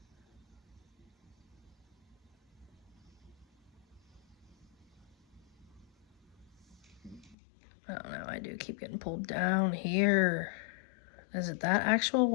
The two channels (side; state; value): right; drops out; at 7.4 s